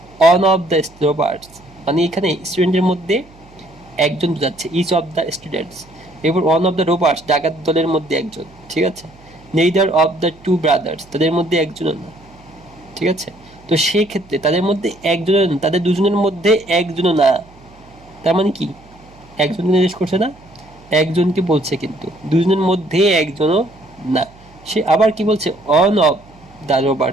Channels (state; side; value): noise; right; hum, 25 dB below the sound